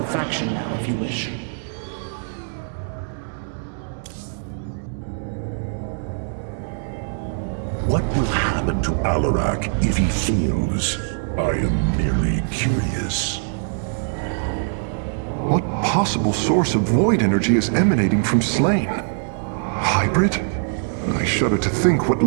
faction now if you wish. What will happen to Alarak if he fails? I am merely curious. What possible source of void energy is emanating from Slain? Hybrid? I shudder to think what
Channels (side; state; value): left; silent; 64 dB below the other